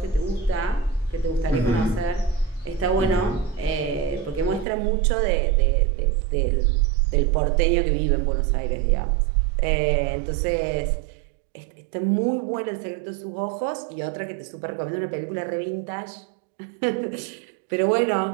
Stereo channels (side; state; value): left; drops out; at 4.7 s